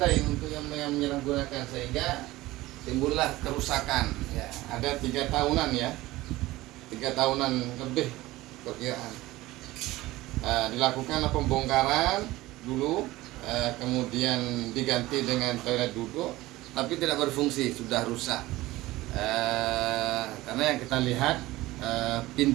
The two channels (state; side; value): quieter; left; 18.1 dB